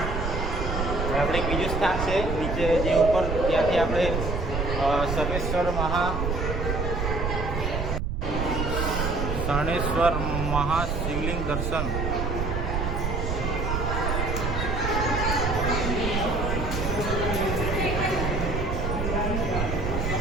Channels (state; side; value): noise; right; rumble, 1 dB below the sound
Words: આપણે એક બીજું સ્થાન છે નીચે જે ઉપર, ત્યાંથી આપણે શરણેશ્વર મહાશિવલિંગ દર્શન.